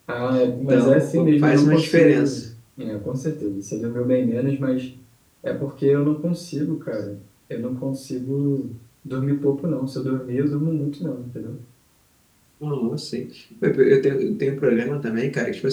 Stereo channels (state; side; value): identical; both; correlation 1.00